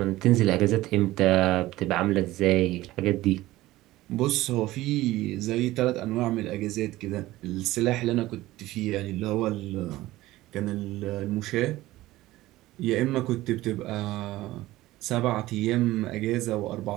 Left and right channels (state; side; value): quieter; left; 17.1 dB